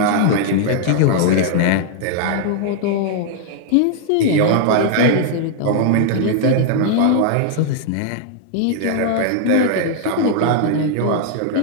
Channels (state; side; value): different; both; correlation 0.00